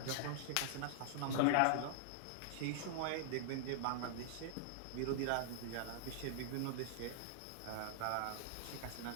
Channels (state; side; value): different; both; correlation -0.01